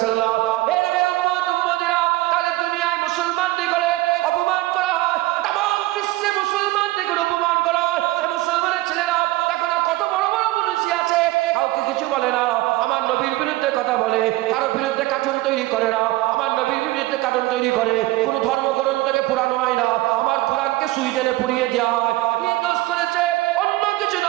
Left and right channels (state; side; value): quieter; left; 18.6 dB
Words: আলাইহি ওয়াসাল্লাম। তাহলে দুনিয়ায় মুসলমানদের করে অপমান করা হয়, তামাম বিশ্বে মুসলমানদের করে অপমান করা হয়। মুসলমানের ছেলেরা দেখো না কত বড় বড় পুলিশ আছে, কাউকে কিছু বলে না। আমার নবীর বিরুদ্ধে কথা বলে, কারো বিরুদ্ধে কার্টুন তৈরি করে না। আমার নবীর বিরুদ্ধে কার্টুন তৈরি করে, কোন ধর্মগ্রন্থকে পুরানো হয় না। আমার কোরআনকে সুইডেনে পুড়িয়ে দেওয়া হয়। কি দোষ করেছে? অন্য কিছু